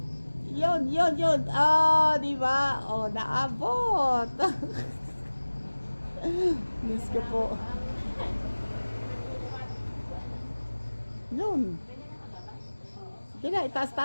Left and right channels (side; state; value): both; inverted; correlation -1.00